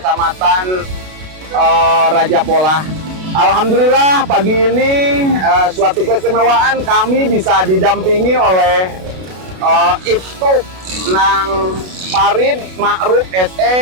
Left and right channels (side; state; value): left; late; 32 ms